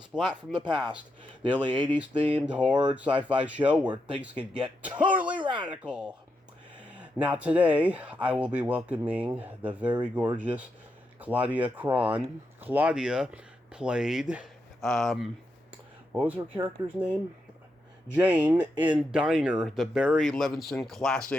Splat from the Past, the only 80s themed horror sci-fi show where things can get totally radical. Now today, I will be welcoming the very gorgeous Claudia Cron. Claudia played, what was her character's name? Jane in Diner, the Barry Levinson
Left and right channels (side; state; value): both; normal; correlation 0.84